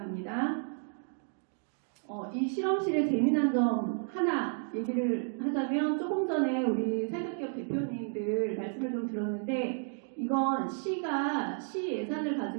이 실험실의 재미난 점 하나 얘기를 하자면, 조금 전에 우리 사회기업 대표님들 말씀을 좀 들었는데, 이건 시가 시 예산을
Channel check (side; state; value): left; silent; 56 dB below the other